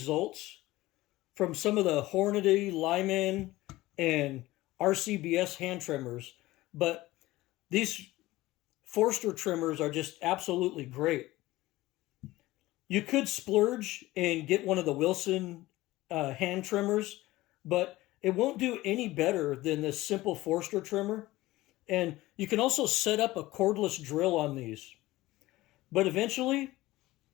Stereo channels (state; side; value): quieter; right; 18.0 dB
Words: from some of the Hornady, Lyman, and RCBS hand trimmers, but these Forster trimmers are just absolutely great. You could splurge and get one of the Wilson hand trimmers, but it won't do any better than this simple Forster trimmer. And you can also set up a cordless drill on these. But eventually,